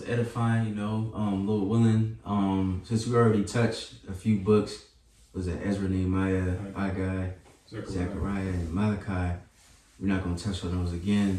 edifying, you know. Lord willing, since we already touched a few books, was it Ezra, Nehemiah, Haggai, Zechariah, and Malachi? We're not gonna touch on those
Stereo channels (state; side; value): identical; both; correlation 1.00